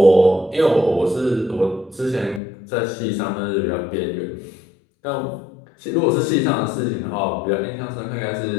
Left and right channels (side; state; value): right; drops out; at 2.4 s